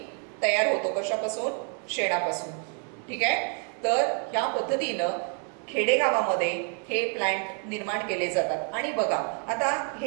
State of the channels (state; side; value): quieter; left; 39.9 dB